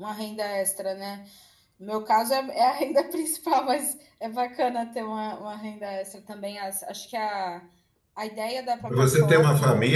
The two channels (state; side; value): identical; both; correlation 1.00